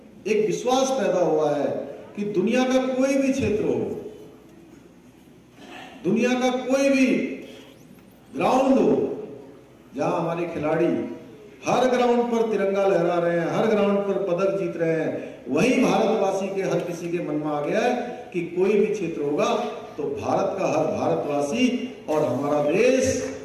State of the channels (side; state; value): both; identical; correlation 1.00